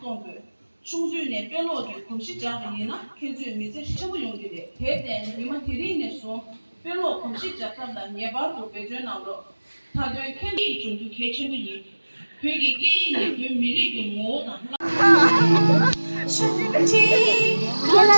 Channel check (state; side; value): inverted; both; correlation -1.00